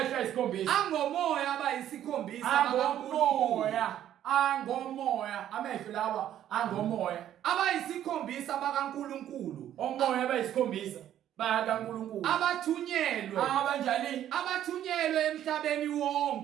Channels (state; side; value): quieter; left; 11.3 dB